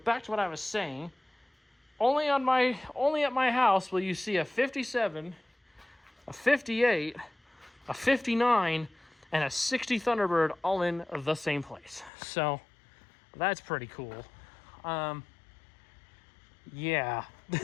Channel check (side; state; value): right; drops out; at 12.1 s